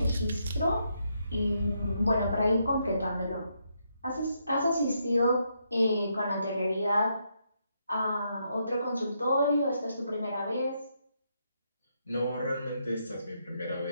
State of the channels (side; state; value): both; inverted; correlation -0.78